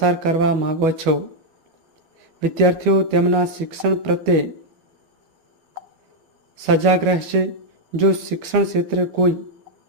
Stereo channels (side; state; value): left; late; 12 ms